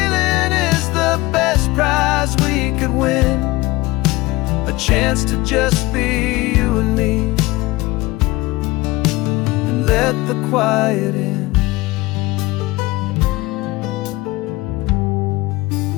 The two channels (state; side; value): quieter; right; 20.4 dB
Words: is the best prize we could win, a chance to just be you and me, and let the quiet in.